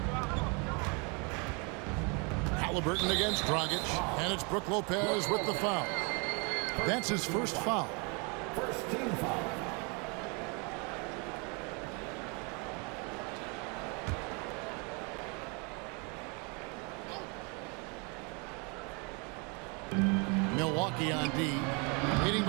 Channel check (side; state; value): left; quieter; 32.5 dB